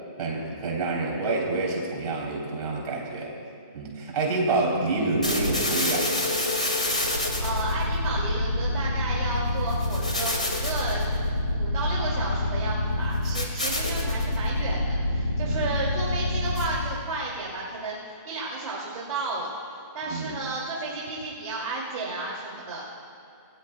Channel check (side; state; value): both; inverted; correlation -0.46